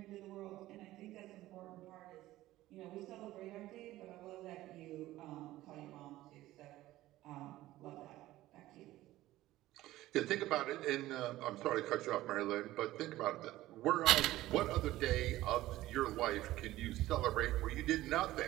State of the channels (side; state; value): left; quieter; 16.0 dB